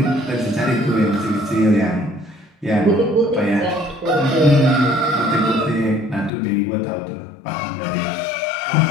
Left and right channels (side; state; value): right; drops out; at 6.3 s